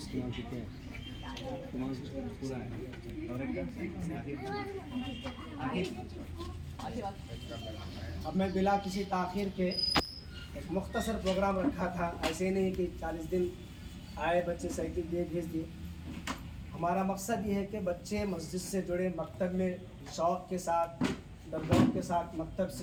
मैं बिला किसी ताख़ीर के एक मुख्तसर प्रोग्राम रखा था, ऐसे नहीं कि 40 दिन आए बच्चे साइकिल दिए भेज दिए। हमारा मकसद ये है कि बच्चे मस्जिद से जुड़े, मकतब में शौक़ के साथ, दरगाह के साथ मकतब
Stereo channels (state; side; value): identical; both; correlation 1.00